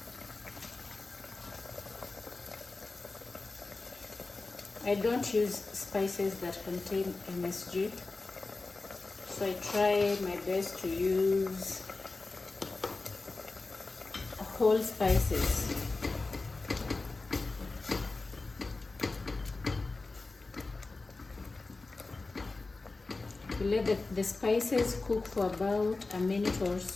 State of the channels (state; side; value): quieter; right; 3.5 dB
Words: I don't use spices that contain MSG, so I try my best to use whole spices. We let the spices cook for about a minute or